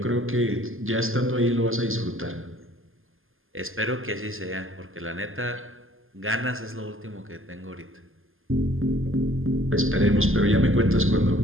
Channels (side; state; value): left; late; 0.59 ms